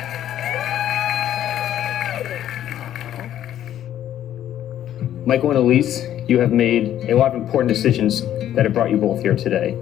Michael and Elise, you have made a lot of important decisions that have brought you both here today.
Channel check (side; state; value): right; quieter; 11.5 dB